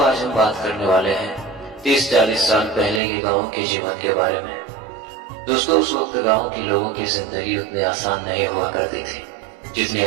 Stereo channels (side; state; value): left; drops out; at 3.0 s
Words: आज हम बात करने वाले हैं 30-40 साल पहले के गांव के जीवन के बारे में। दोस्तों उस वक्त गांव के लोगों की जिंदगी उतनी आसान नहीं हुआ करती थी जितनी